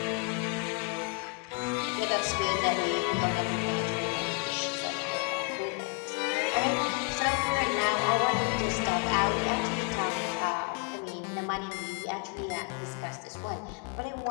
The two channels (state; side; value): quieter; right; 32.4 dB